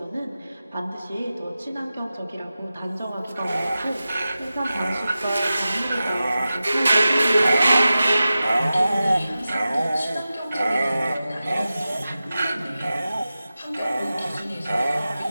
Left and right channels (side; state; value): both; inverted; correlation -0.94